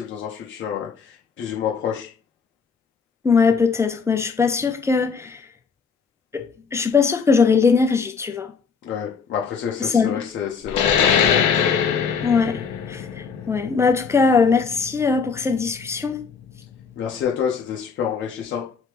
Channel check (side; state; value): right; quieter; 5.6 dB